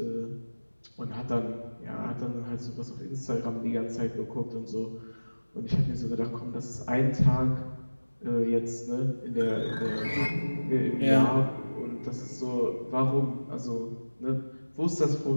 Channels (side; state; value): both; inverted; correlation -1.00